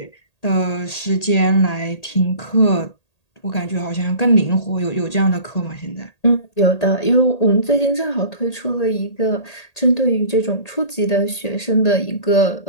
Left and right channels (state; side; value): late; right; 1.8 ms